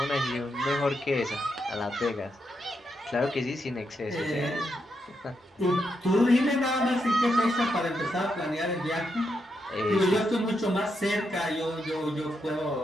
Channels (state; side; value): normal; both; correlation 0.82